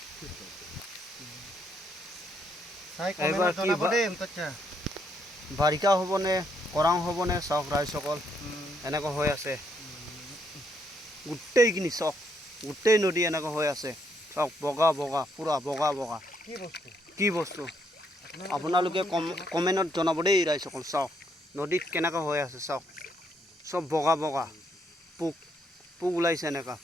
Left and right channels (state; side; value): normal; both; correlation 0.73